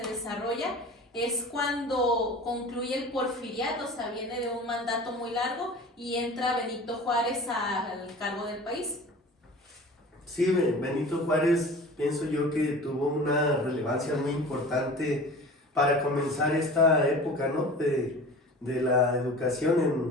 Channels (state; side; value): normal; both; correlation 0.39